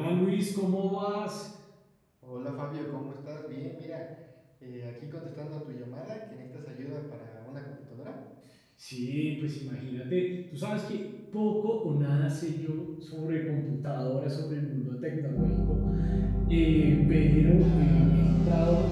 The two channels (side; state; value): both; identical; correlation 1.00